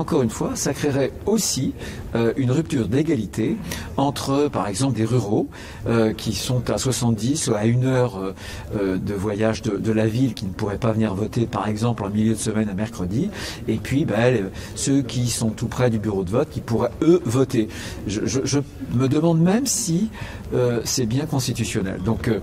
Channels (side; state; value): both; identical; correlation 1.00